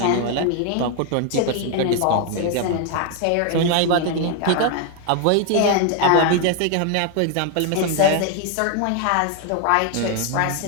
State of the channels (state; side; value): different; both; correlation 0.00